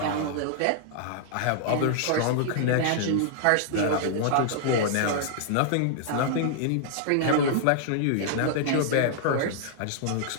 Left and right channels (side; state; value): both; different; correlation -0.01